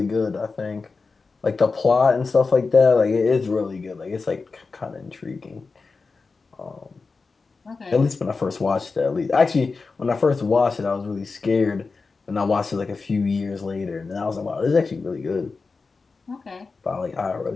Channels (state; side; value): quieter; right; 4.3 dB